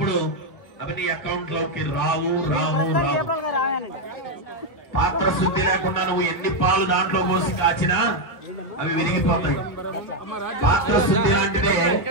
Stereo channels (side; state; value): right; late; 1.6 ms